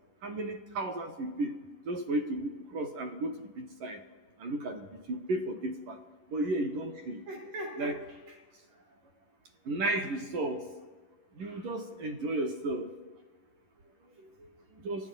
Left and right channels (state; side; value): late; left; 11 ms